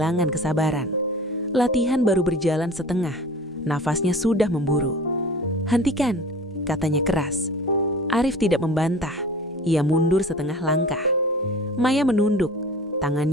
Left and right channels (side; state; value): both; normal; correlation 0.41